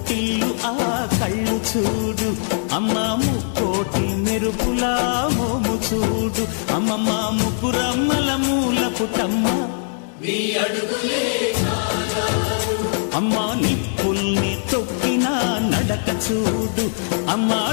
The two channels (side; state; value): right; silent; 65 dB below the other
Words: ఆ కళ్ళు చూడు, అమ్మా ముక్కోటి మెరుపులా మోము చూడు, అమ్మమ్మ ముగ్గురమ్మల మూల పుటమ్మ అమ్మా నిప్పుల్ని తొక్కిన నడక చూడు, అమ్మా